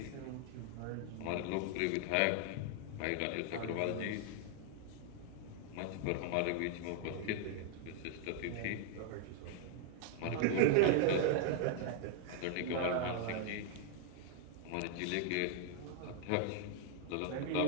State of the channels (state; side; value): different; both; correlation 0.00